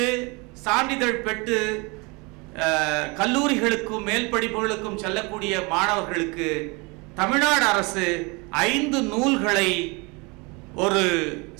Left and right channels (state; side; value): quieter; left; 27.9 dB